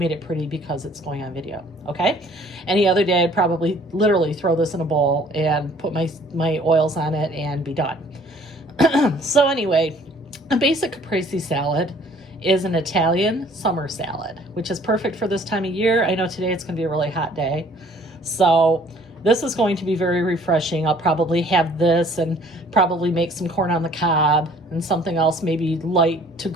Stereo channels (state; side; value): normal; both; correlation 0.56